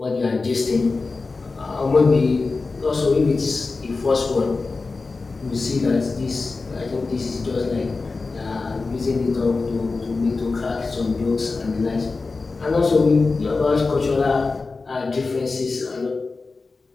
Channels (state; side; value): quieter; right; 3.9 dB